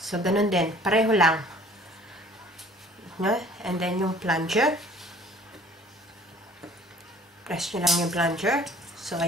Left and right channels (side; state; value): both; normal; correlation 0.52